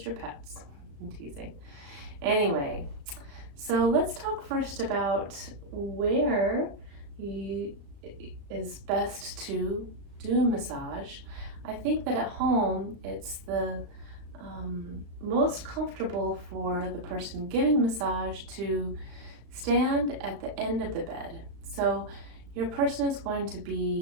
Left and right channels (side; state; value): left; late; 35 ms